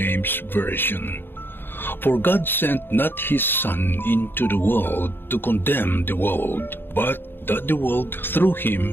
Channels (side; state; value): right; late; 0.10 ms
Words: Version. For God sent not his Son into the world to condemn the world, but that the world through